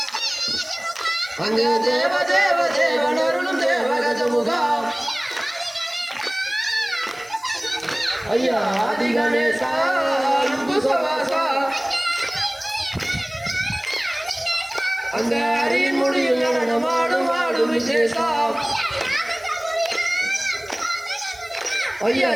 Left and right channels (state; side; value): noise; left; hiss, 25 dB below the sound